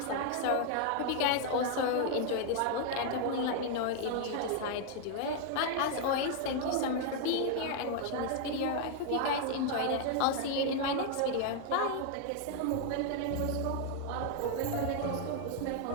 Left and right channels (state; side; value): different; both; correlation 0.00